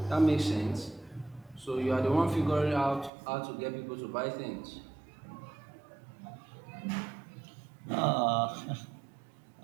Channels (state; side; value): drops out; left; at 3.1 s